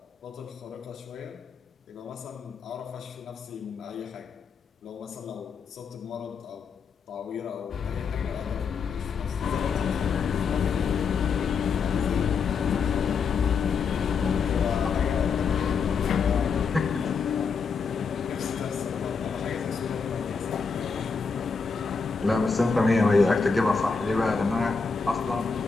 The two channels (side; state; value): right; quieter; 5.3 dB